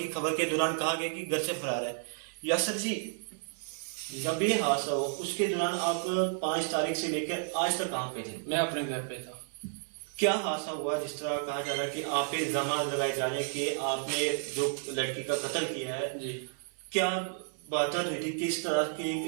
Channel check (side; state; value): left; silent; 57 dB below the other